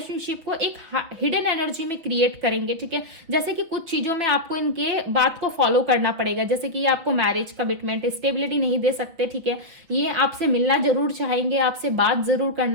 को एक हिडन एनर्जी में क्रिएट करेंगे, ठीक है। जैसे कि कुछ चीजों में आपको इनके बात को फॉलो करना पड़ेगा, जैसे कि ये आपको मैरिज, कमिटमेंट, स्टेबिलिटी नहीं दे सकते, ठीक है। ये आपसे मिलना जरूर चाहेंगे, आपसे बात जरूर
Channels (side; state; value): left; late; 6.0 ms